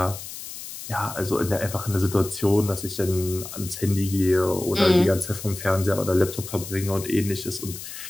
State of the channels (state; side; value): noise; left; hiss, 11 dB below the sound